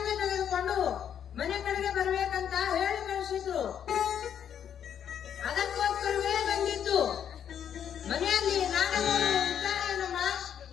ತೆಗೆದುಕೊಂಡು ಮನೆ ಕಡೆಗೆ ಬರ್ಬೇಕಂತ ಹೇಳಿ ಕಳಿಸಿದ್ರು. ಅದಕ್ಕೋಸ್ಕರವೇ ಬಂದಿದ್ದು. ಮನೆಯಲ್ಲಿ ನಾಡಗೌಡರು ಇದ್ದಾರೇನಮ್ಮ?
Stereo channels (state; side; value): quieter; right; 9.0 dB